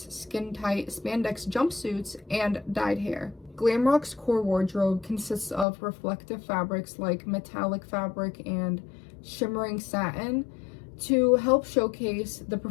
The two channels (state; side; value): drops out; right; at 5.7 s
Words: skin-tight spandex jumpsuits, and dyed hair. Glam rock's core wardrobe consists of reflective fabrics like metallic fabric and shimmering satin to help showcase the